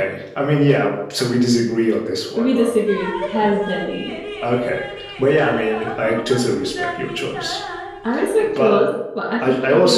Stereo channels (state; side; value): identical; both; correlation 1.00